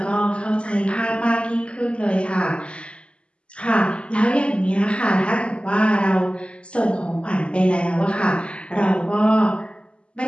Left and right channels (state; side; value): late; right; 0.055 ms